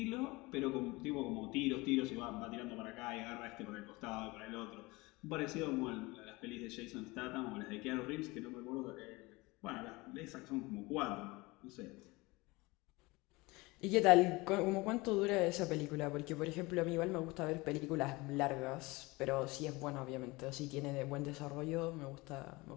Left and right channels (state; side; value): quieter; right; 23.1 dB